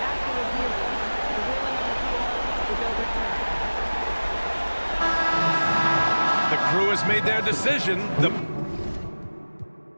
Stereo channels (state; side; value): inverted; both; correlation -1.00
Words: The crew has made their decision. The